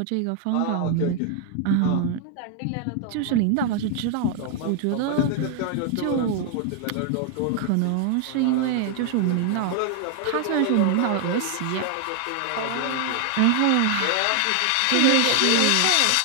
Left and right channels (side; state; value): both; different; correlation 0.00